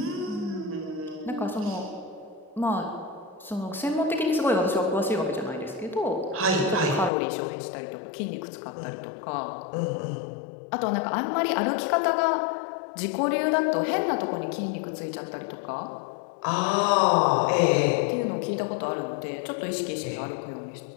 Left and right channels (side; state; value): right; drops out; at 7.1 s